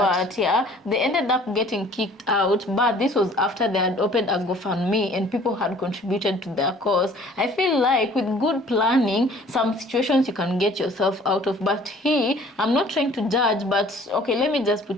Yeah, they ended up getting kicked out, but this was after they had opened a GoFundMe and people had contributed to their cause. I feel like with good planning, some situations you can get yourself out of. But I'm not trying to judge, but okay, let me just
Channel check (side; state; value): both; normal; correlation 0.53